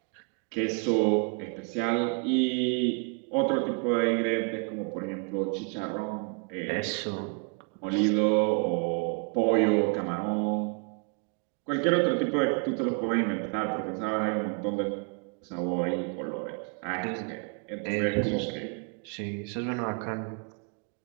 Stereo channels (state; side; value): quieter; left; 38.2 dB